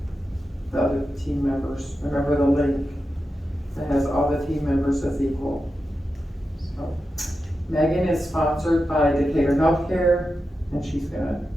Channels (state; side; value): normal; both; correlation 0.90